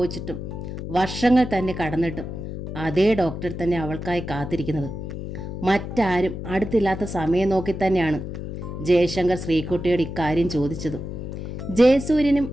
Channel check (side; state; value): left; noise; hum, 7 dB below the sound